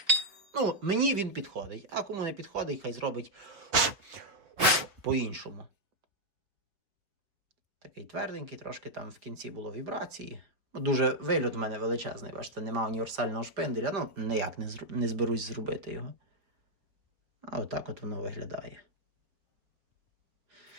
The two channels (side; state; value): left; late; 4.7 ms